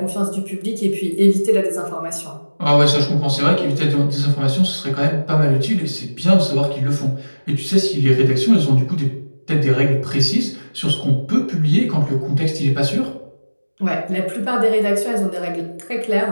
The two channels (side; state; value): both; inverted; correlation -1.00